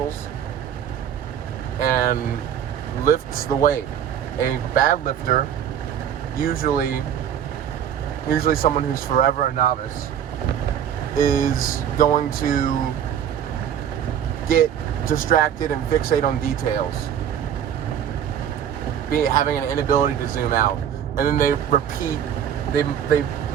and lifts the weight. A bad lifter, usually someone who's forever a novice, is going to get distracted and fixate on details, having an inability to zoom out, and then they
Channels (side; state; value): left; quieter; 9.2 dB